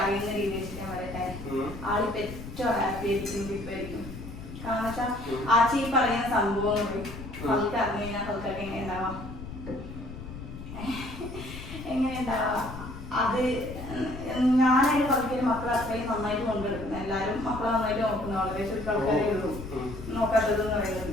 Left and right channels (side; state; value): left; noise; rumble, 11 dB below the sound